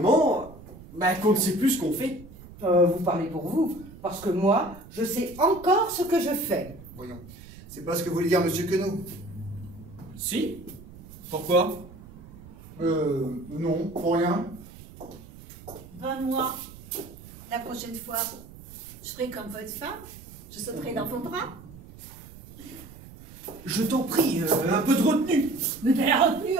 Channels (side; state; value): right; noise; rumble, 18 dB below the sound